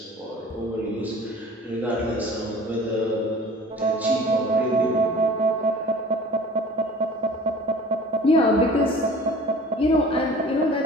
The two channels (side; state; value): both; normal; correlation 0.45